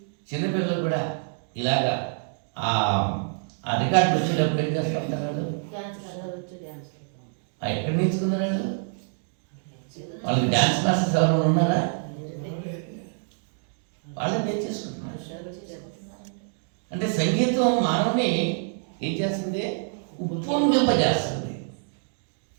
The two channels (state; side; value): silent; left; 61 dB below the other